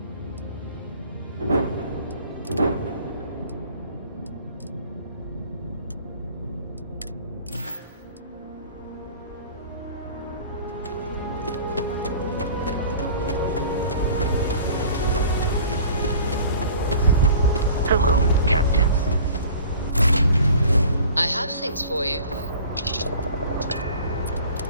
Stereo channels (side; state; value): both; inverted; correlation -0.46